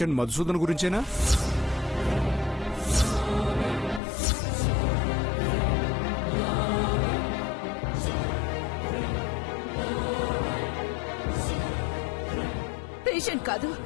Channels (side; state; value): right; drops out; at 4.0 s